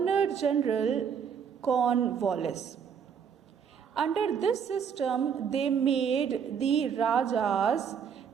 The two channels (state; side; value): quieter; left; 7.3 dB